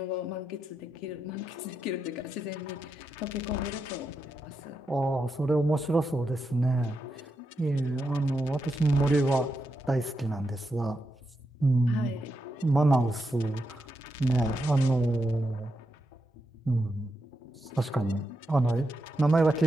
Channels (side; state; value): both; normal; correlation 0.85